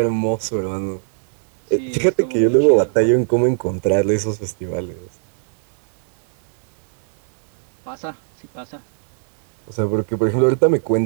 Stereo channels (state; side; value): silent; left; digital silence